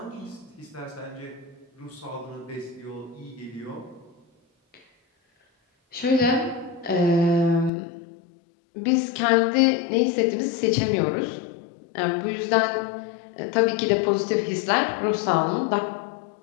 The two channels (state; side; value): drops out; right; at 7.7 s